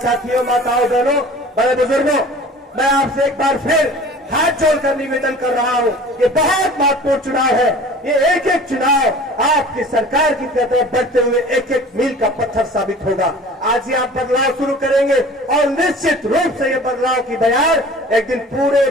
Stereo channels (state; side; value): normal; both; correlation 0.43